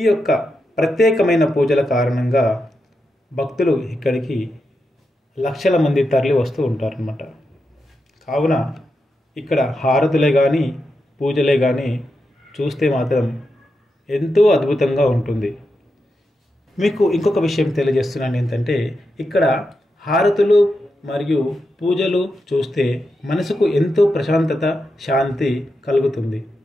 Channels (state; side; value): normal; both; correlation 0.87